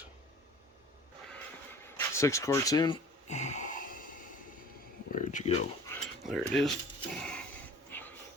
6 quarts in. Where'd you go? There it is.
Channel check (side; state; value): both; normal; correlation 0.46